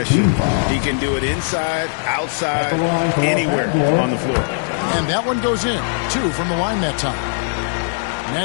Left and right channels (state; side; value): silent; right; digital silence